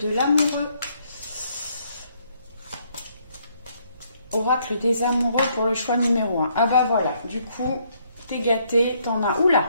l'amoureux. Oracle des amoureux pour le choix numéro 1. Ah voilà, du coup, t'es gâté, t'en as... Oula!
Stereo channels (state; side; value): inverted; both; correlation -0.70